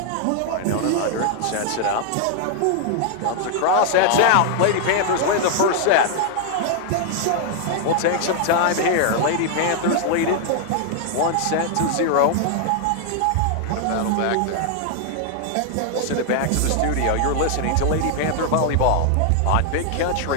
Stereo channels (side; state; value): both; different; correlation -0.01